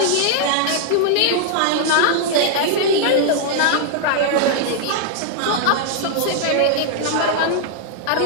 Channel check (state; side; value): different; both; correlation 0.00